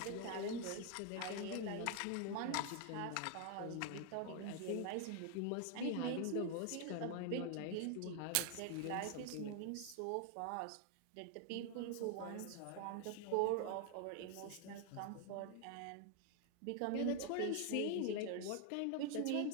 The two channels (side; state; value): both; different; correlation 0.00